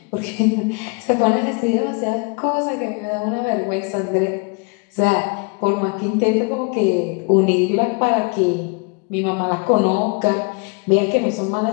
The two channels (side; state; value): right; quieter; 32.1 dB